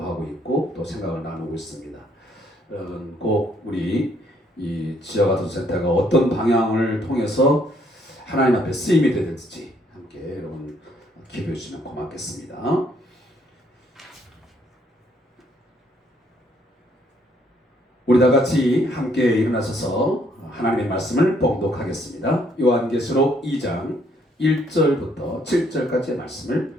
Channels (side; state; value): both; normal; correlation 0.68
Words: 하고 있고 또 생각을 나누고 있습니다. 꼭 우리 이 지역아동센터가 어떤 방향을 통해서 하나님 앞에 쓰임이 되든지 함께 여러분 기도해 주시면 고맙겠습니다. 우리 다 같이 함께 일어나셔서 하나님의 말씀을 봉독하겠습니다. 요한계시록 2장 1절부터 7절까지의